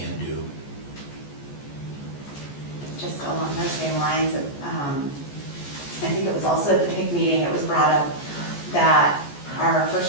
do. Just along those same lines, I think it was also at the PIC meeting, it was brought up that our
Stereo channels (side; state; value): right; late; 14 ms